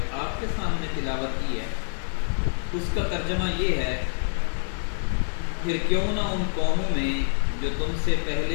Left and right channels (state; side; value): silent; right; 61 dB below the other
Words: آپ کے سامنے تلاوت کی ہے اس کا ترجمہ یہ ہے، پھر کیوں نہ ان قوموں میں جو تم سے